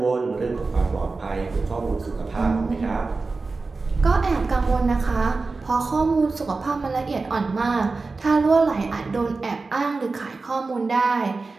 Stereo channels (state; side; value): quieter; left; 3.9 dB